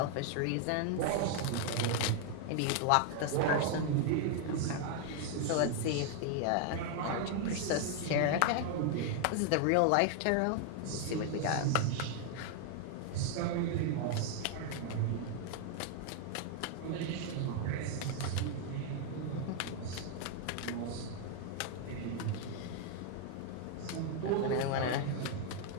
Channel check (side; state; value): both; different; correlation 0.00